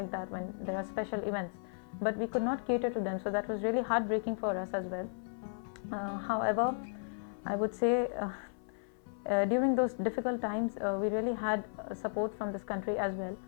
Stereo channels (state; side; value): silent; right; 55 dB below the other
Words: that, when there are special events. But we could not cater to them, so that was really heartbreaking for us as well. However, I would say during those difficult times, we really had support from this country as well,